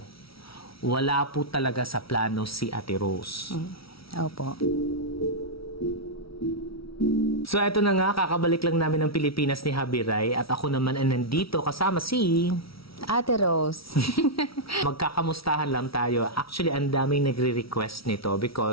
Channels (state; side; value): late; right; 0.75 ms